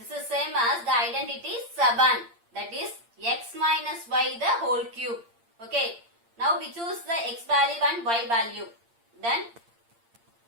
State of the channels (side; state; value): left; late; 8.7 ms